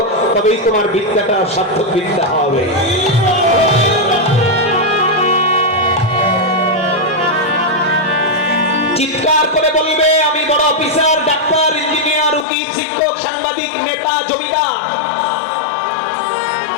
তবেই তোমার বিদ্যাটা সার্থক বিদ্যা হবে। চিৎকার করে বলবে, আমি বড় অফিসার, ডাক্তার, ইঞ্জিনিয়ার, উকিল, শিক্ষক, সাংবাদিক, নেতা, জমিদার।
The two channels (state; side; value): drops out; right; at 12.5 s